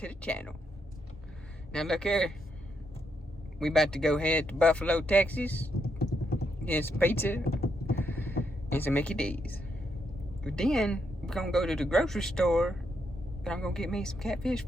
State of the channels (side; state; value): both; normal; correlation 0.79